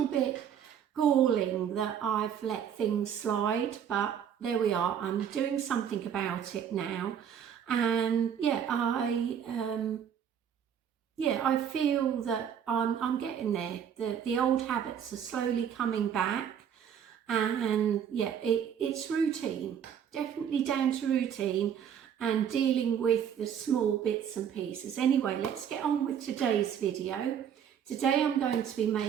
bit galling that I've let things slide, but there we are. I'm doing something about it now, and I feel that I'm getting there. The old habits are slowly coming back, and it's routine, definitely down to routine and dealing with the small bits and pieces. Anyway, let's get on with today's video. Today I'm going to be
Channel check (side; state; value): left; quieter; 8.5 dB